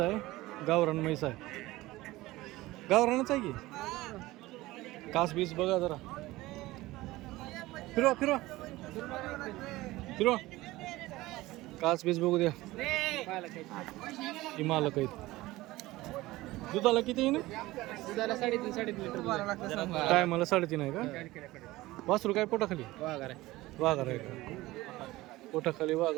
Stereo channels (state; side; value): quieter; left; 18.5 dB